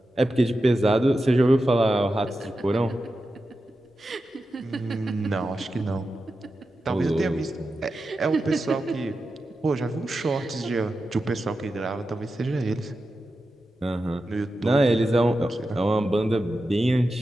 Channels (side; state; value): both; normal; correlation 0.91